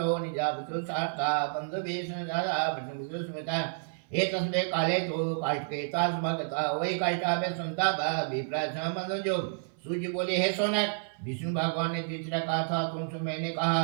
निजावतु सार्था बन्धुभीषणजाता स्मृता एतस्मे काले तो काष्ठकेता समागता वही काष्ठाभे संताप विप्रासमंदो। सूर्य बोले हे सोनक विष्णु भगवान ने तीसरा कहा था तुमसे मैंने कहा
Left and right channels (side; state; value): left; silent; 58 dB below the other